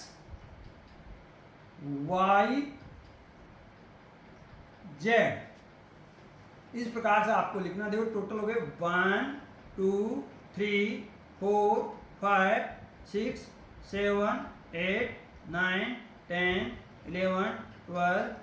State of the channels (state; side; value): identical; both; correlation 1.00